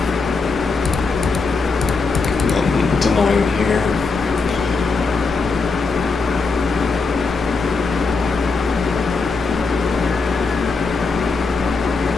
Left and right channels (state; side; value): quieter; right; 4.3 dB